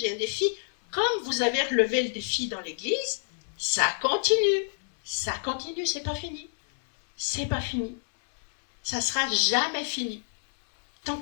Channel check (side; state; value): right; silent; 60 dB below the other